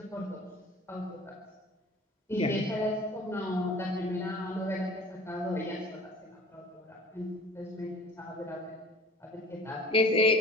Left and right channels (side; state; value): both; normal; correlation 0.44